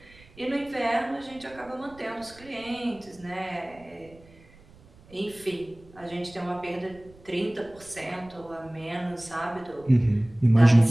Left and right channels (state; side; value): noise; right; rumble, 24 dB below the sound